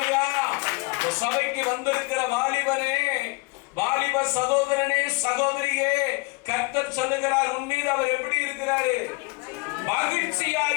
சபைக்கு வந்திருக்கிற வாலிபனே, வாலிப சகோதரனே, சகோதரியே, கர்த்தர் சொல்லுகிறார், உன் மீது அவர் எப்படி இருக்கிறாரு? மகிழ்ச்சியாக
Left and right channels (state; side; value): quieter; right; 28.9 dB